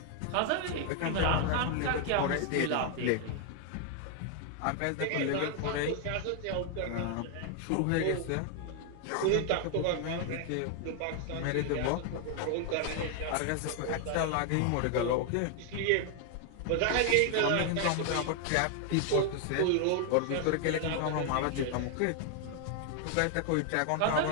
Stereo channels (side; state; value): both; different; correlation 0.00